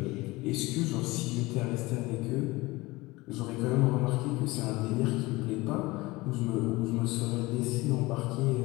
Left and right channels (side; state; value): right; quieter; 21.4 dB